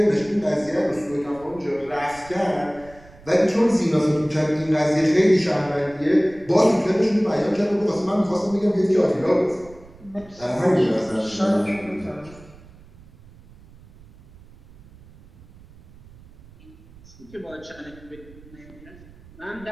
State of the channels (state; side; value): noise; right; rumble, 23 dB below the sound